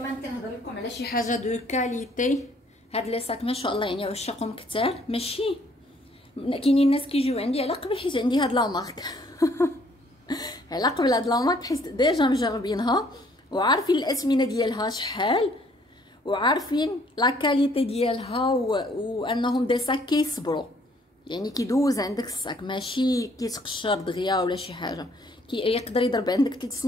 كنهضر لكم على شي حاجه دو كاليتي. هاد لي ساك ما شاء الله يعني عشاقهم كثار، ماشي كاينين الناس كيجيو عندي على قبل حيت عندي هاد لا مارك على قبل هاد لا مارك حيت ديجا مجربينها وعارفين الاثمنه ديالها شحال، وعارفين لا كاليتي ديالها وانهم دي ساك كيصبروا، يعني كيدوز عندك الساك ماشي كيتقشر دغيا ولا شي حاجه، يقدر يضرب عندك 3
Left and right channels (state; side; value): normal; both; correlation 0.62